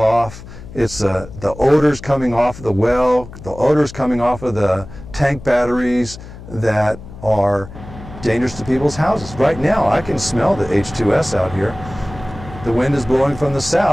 It's the odors coming off of the well, the odors coming off of the tank batteries that are dangerous to people's houses. Right now, I can smell the H2S out here. The wind is blowing from the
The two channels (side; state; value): left; noise; hum, 15 dB below the sound